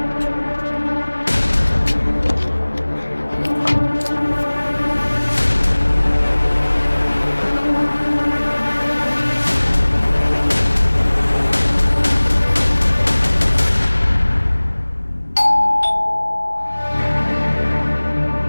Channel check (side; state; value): both; inverted; correlation -1.00